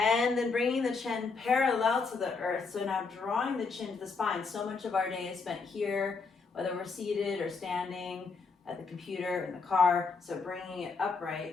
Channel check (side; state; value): right; quieter; 4.6 dB